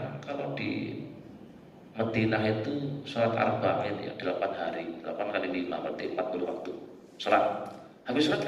kalau di Madinah itu sholat arba'in ya 8 hari, 8 kali 5 berarti 40 waktu sholat. Habis sholat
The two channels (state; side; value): identical; both; correlation 1.00